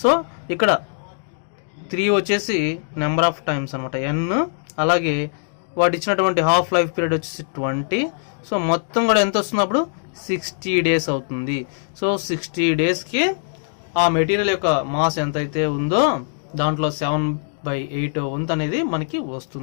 So ఇక్కడ 3 వచ్చేసి నెంబర్ ఆఫ్ టైమ్స్ అనమాట n. అలాగే వాడు ఇచ్చినటువంటి హాఫ్ లైఫ్ పీరియడ్ వచ్చేసి 20. సో మొత్తం కూడా ఎంత వస్తున్నప్పుడు 60 days అవుతుంది. సో 60 daysకి ఆ మెటీరియల్ యొక్క మాస్ ఎంతైతే ఉందో దాంట్లో 7/8 వంతు అనేది మనకి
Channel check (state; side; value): silent; right; digital silence